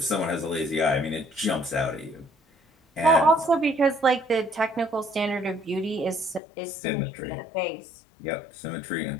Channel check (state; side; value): drops out; right; at 6.4 s